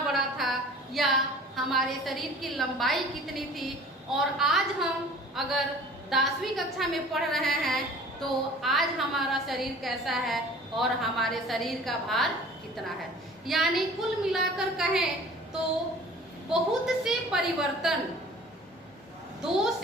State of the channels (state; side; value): normal; both; correlation 0.46